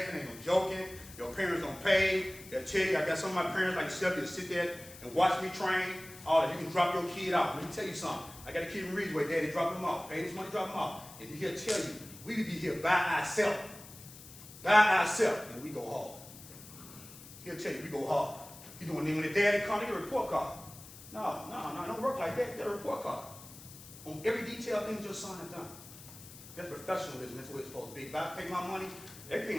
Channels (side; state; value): left; noise; hiss, 17 dB below the sound